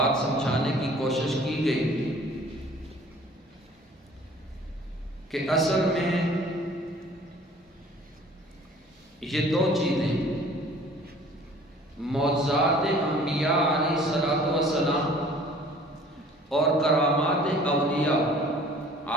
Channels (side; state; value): both; normal; correlation 0.51